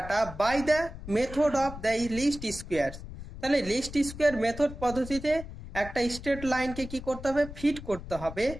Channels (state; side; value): noise; left; rumble, 12 dB below the sound